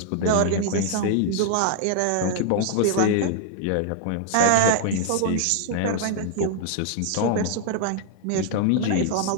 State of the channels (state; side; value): different; both; correlation 0.00